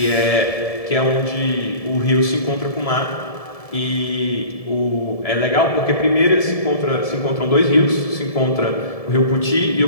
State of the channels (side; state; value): right; late; 1.7 ms